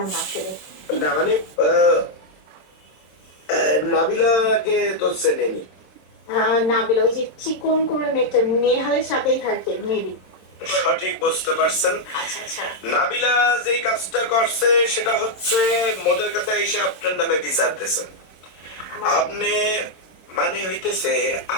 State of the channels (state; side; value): late; right; 26 ms